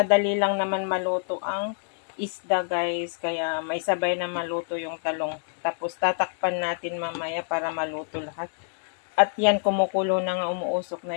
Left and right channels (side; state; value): right; silent; digital silence